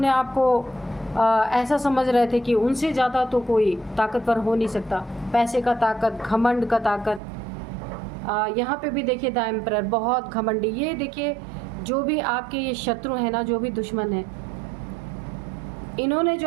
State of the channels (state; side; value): drops out; left; at 7.2 s